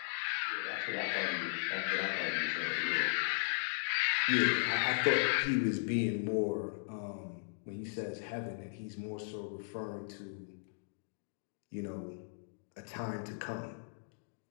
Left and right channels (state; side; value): silent; right; digital silence